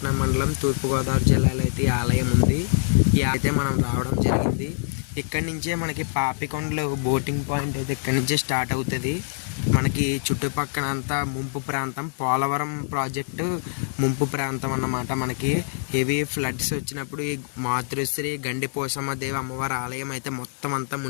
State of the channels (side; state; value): right; silent; digital silence